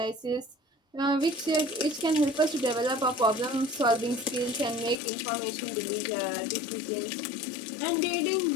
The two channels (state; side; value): drops out; right; at 5.0 s